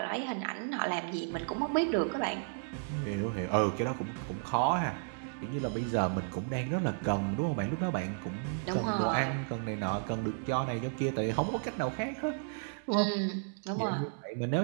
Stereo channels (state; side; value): silent; left; digital silence